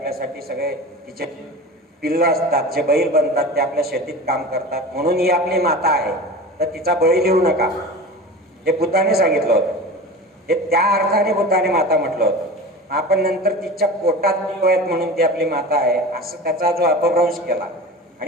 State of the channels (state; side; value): normal; both; correlation 0.33